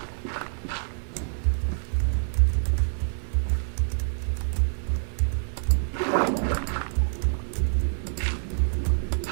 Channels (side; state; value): left; silent; digital silence